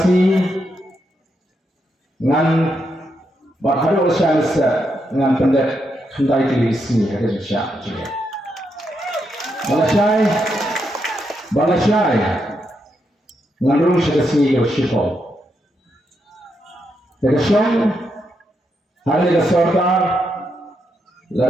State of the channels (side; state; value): both; normal; correlation 0.81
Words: ngan baharu usaha ngan pendek hendai tulis ni kerja juga. Balasai Nganrung sekasi yoshiko. Tekasong hari ke sarkar